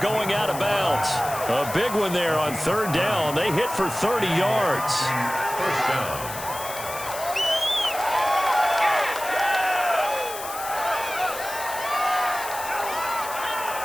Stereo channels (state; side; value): noise; left; hiss, 10 dB below the sound